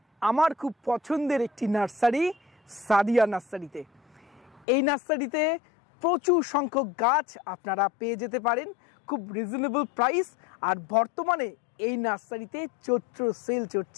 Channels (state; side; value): drops out; right; at 4.7 s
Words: আমার খুব পছন্দের একটি নার্সারি, সাদিয়া নার্সারিতে। এই নার্সারিতে প্রচুর সংখ্যক গাছ আপনারা পেয়ে যেতে পারেন খুব রিজনেবল প্রাইস। আর বর্তমানে এই নার্সারিতে চৈত্র সেল